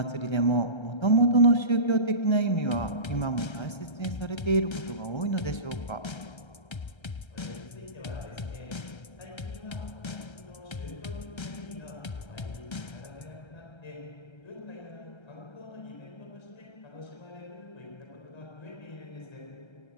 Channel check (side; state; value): right; late; 1.3 ms